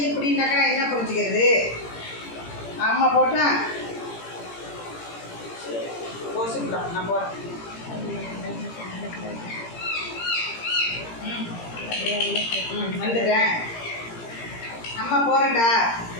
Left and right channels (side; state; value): right; late; 17 ms